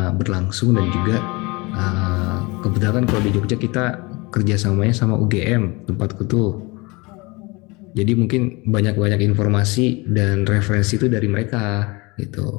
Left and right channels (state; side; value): quieter; right; 25.7 dB